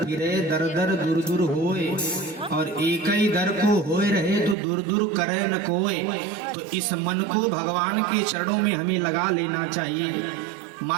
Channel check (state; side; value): drops out; left; at 4.5 s